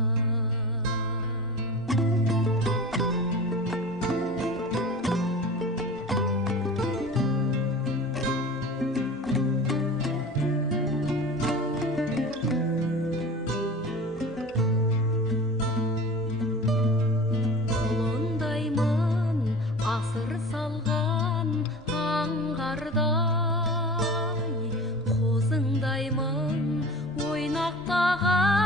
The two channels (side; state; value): both; normal; correlation 0.37